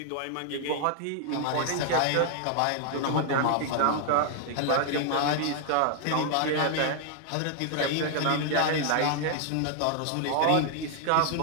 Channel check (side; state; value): both; different; correlation 0.00